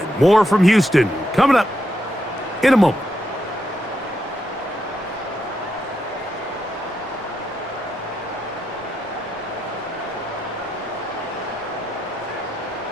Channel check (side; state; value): both; normal; correlation 0.82